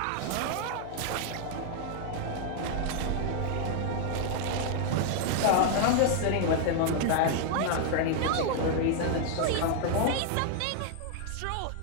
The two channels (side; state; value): both; different; correlation 0.00